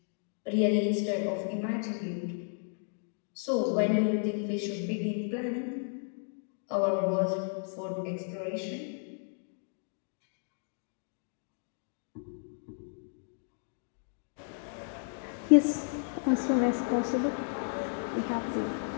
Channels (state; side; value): silent; right; 56 dB below the other